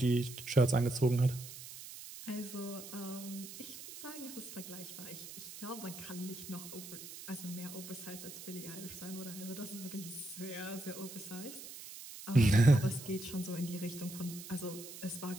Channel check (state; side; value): noise; right; hiss, 12 dB below the sound